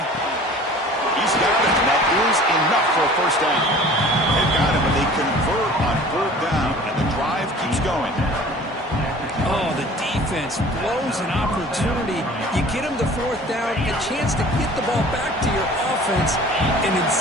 got it, and that is enough for a 1st down. They've got him, and they convert on 4th down, and the drive keeps going. Oh, the defense blows an opportunity. You get them to 4th down, a chance to get the ball back to your offense, and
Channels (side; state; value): both; normal; correlation 0.46